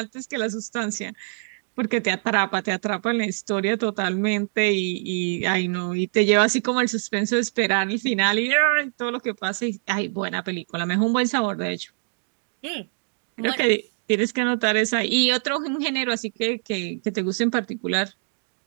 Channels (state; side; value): silent; left; digital silence